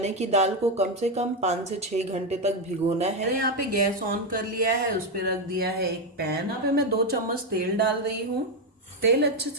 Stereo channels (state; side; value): normal; both; correlation 0.07